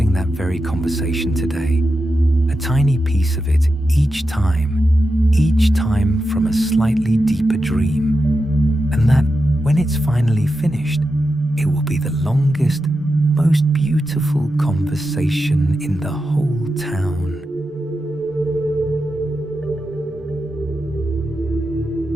that very conversation today, a tiny piece of it each time from a slightly deeper dream, and that when it's finally finished, it will be the longest, most beautiful conversation in the whole town.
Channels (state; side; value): normal; both; correlation 0.89